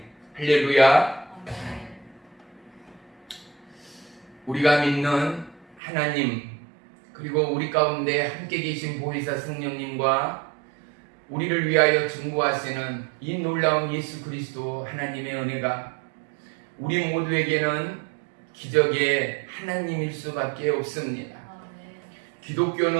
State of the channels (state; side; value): drops out; left; at 5.8 s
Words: 할렐루야. 우리가 믿는 하나님, 그리고 우리 가운데 함께 계신 보혜사 성령님과 우리를 위하여 증거하시는 이 놀라운 예수 그리스도 하나님의 은혜가 우리 모두에게는 기적의 하나님일 수밖에 없습니다.